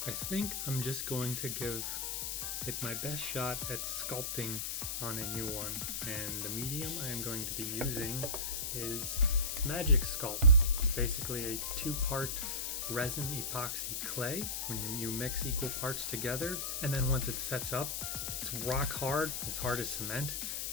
I think I'm just going to give it my best shot at sculpting on a new one. And the medium I am going to be using is Magic Sculpt. It's basically a two-part resin epoxy clay. When you mix equal parts together, and then once it sets up, it's rock hard as cement.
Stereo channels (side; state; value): left; noise; hiss, 2 dB below the sound